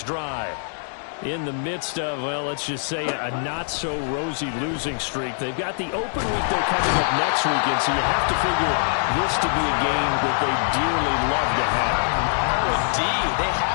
drive. In the midst of, well, let's just say a not-so-rosy losing streak. They've got the open week they're coming up next weekend, so you have to figure this to be a game that they dearly love to have. Oh, indeed. They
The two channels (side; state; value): right; silent; digital silence